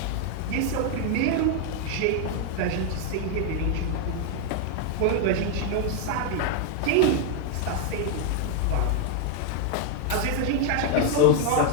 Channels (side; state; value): both; different; correlation 0.01